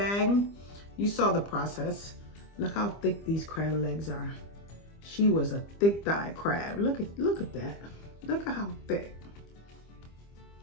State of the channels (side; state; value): right; late; 25 ms